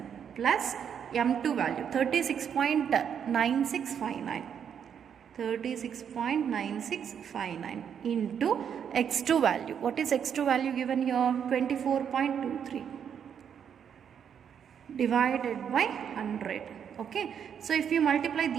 plus m2 value 36.9659 into x2 value. What is x2 value given here? 24.23 divided by 100. Okay, so if you multiply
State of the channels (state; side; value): quieter; left; 8.0 dB